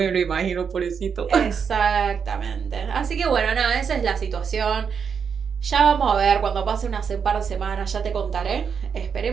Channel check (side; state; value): left; quieter; 6.6 dB